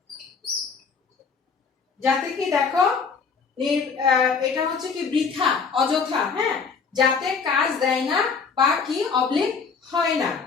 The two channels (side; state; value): right; quieter; 5.4 dB